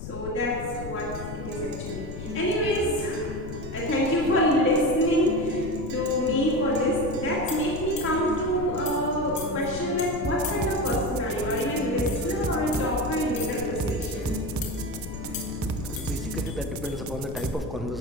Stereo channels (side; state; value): left; noise; rumble, 9 dB below the sound